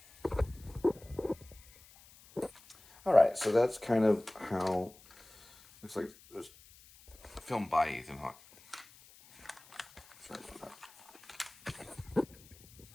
All right, so that's kind of how looks like it was filmed by Ethan Hawke. Sorry about that.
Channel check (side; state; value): left; noise; hiss, 24 dB below the sound